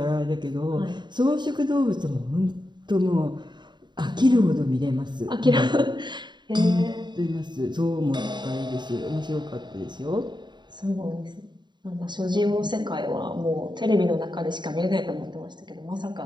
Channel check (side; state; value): left; late; 0.22 ms